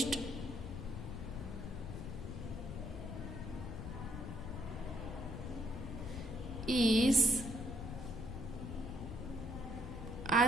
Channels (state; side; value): noise; left; rumble, 7 dB below the sound